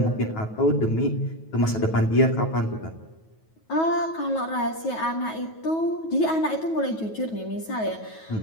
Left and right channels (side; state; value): right; late; 9.3 ms